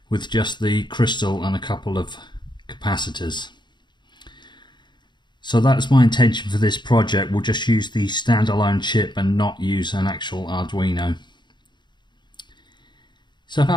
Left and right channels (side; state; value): right; late; 0.22 ms